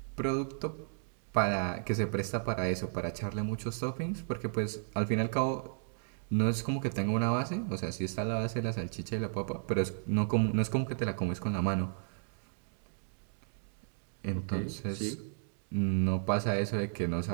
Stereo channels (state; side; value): silent; left; digital silence